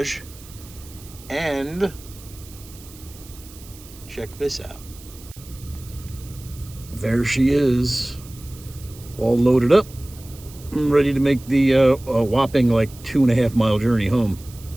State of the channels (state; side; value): noise; right; hiss, 20 dB below the sound